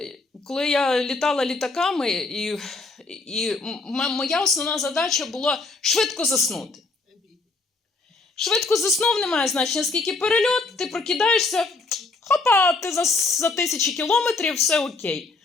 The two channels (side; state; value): right; quieter; 3.5 dB